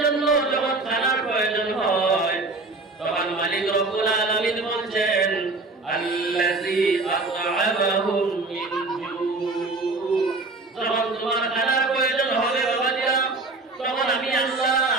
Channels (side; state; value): left; quieter; 3.4 dB